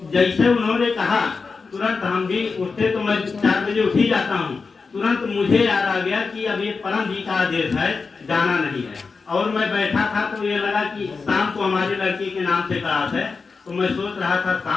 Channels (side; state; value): right; quieter; 4.6 dB